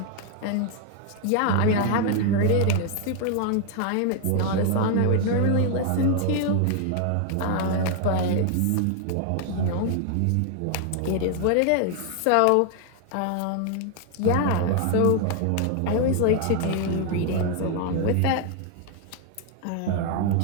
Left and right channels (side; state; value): both; different; correlation 0.00